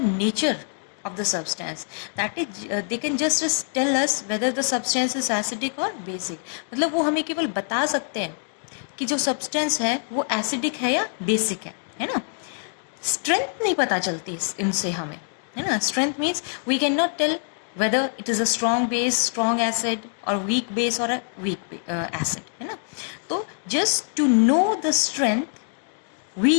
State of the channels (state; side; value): silent; right; 61 dB below the other